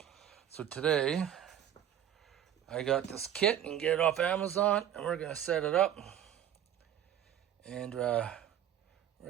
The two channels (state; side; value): quieter; left; 10.3 dB